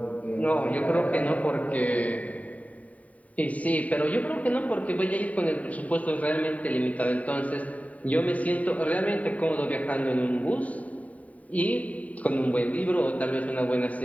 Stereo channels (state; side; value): late; right; 0.069 ms